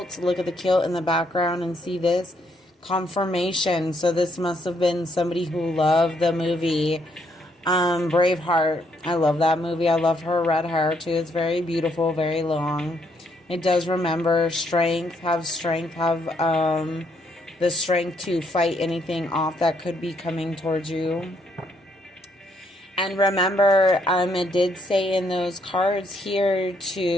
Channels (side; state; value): both; normal; correlation 0.72